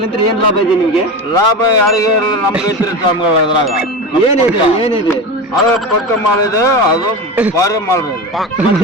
ಏನ್ ಲಾಭ ಇದೆ ನಿಮ್ಗೆ? ಲಾಭ ಯಾರಿಗೆ ನಮ್ಗೆ ಐತ್ರಿ ಸ್ವಾಮಿಗಳು. ಅದ್ರಾಗ ಏನಿದೆ ಅದು ಪಕ್ಕ ಮಾಡಿದೆ, ಅದು ಬಾರಿ ಮಾಡ್ಬೋದು. ಮತ್ತೆ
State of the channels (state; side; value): normal; both; correlation 0.25